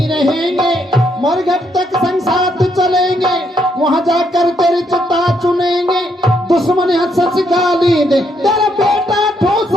मरघट तक संग साथ चलेंगे वहां जाकर तेरी चिता चुनेंगे दुश्मन हंस गाली दे तेरा बेटा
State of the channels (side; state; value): both; normal; correlation 0.74